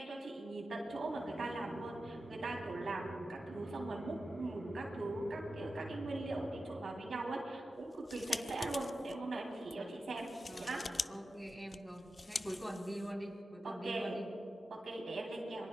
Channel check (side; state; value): both; normal; correlation 0.92